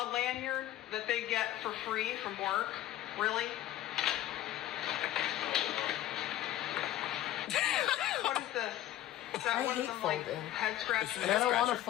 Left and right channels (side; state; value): right; quieter; 13.4 dB